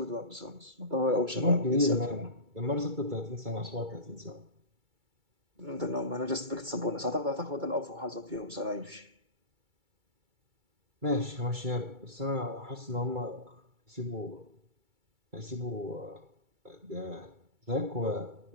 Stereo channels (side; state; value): left; late; 2.3 ms